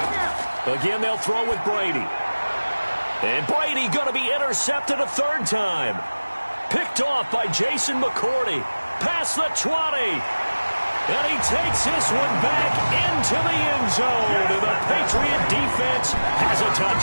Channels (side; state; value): both; inverted; correlation -1.00